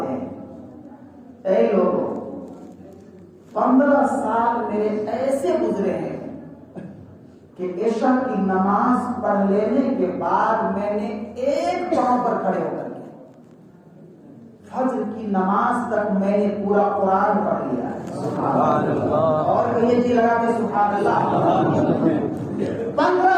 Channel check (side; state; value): both; identical; correlation 1.00